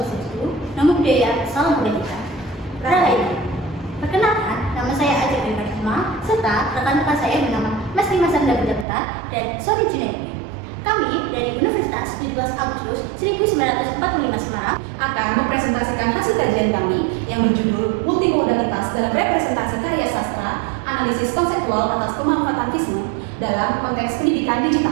Namo Buddhaya, Salam Kebajikan. Rahayu. Perkenalkan, nama saya Ajeng Risma, serta rekan-rekan saya bernama Mas Dimas Sandra Budapta dan Sori Junaidi. Kami dari Universitas 17 Agustus 1945 Semarang akan mempresentasikan hasil kajian kami yang berjudul Multimodalitas dalam Representasi Karya Sastra, Analisis Konseptual atas Pemanfaatan FISME dalam Konteks Pendidikan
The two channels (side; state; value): left; drops out; at 8.8 s